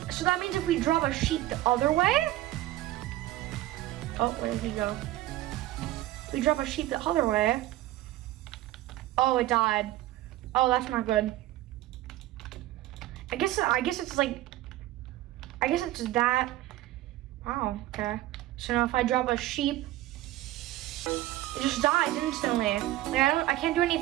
so that means if we drop a sheep the other way, oh, where did he go? We drop a sheep the other way. Oh, it died. Oh, that's not good. I guess it's that. Wow, okay. So now if I drop a sheep, it just dies instantly. Like I can't do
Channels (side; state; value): left; quieter; 15.8 dB